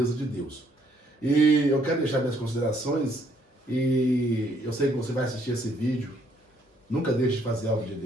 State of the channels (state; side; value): normal; both; correlation 0.67